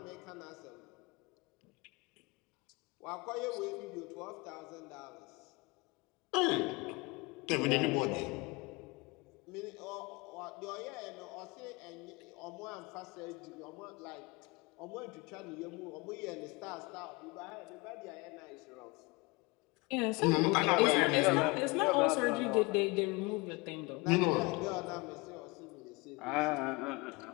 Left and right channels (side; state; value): right; quieter; 25.5 dB